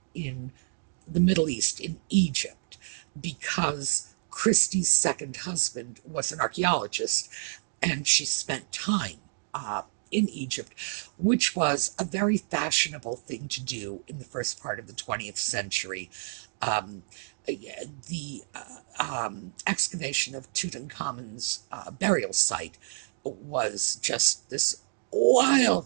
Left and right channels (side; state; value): left; silent; digital silence